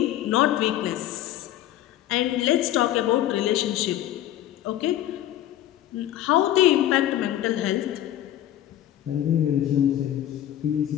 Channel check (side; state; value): right; quieter; 12.7 dB